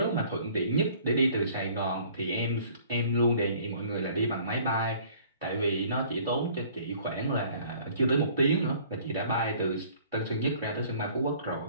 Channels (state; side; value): inverted; both; correlation -0.54